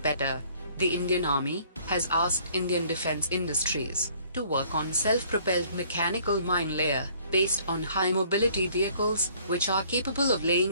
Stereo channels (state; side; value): inverted; both; correlation -0.58